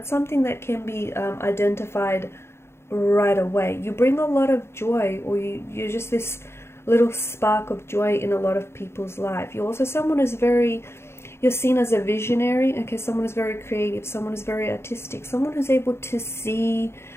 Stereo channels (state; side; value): late; right; 0.12 ms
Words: something that can be identified right away. You bring a lot of joy, or you're just this little spark of joy in a lot of people's life. You're also someone who's you're seen as a visionary, okay? Someone who's very creative, someone who's very artistic, someone who's able to see